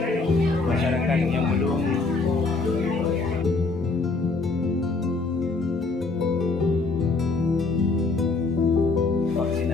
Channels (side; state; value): right; quieter; 3.8 dB